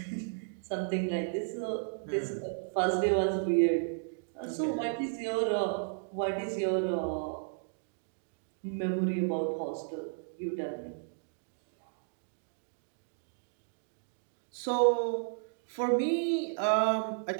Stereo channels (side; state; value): left; silent; digital silence